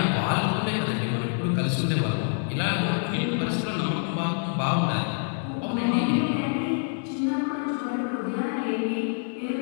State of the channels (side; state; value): right; silent; digital silence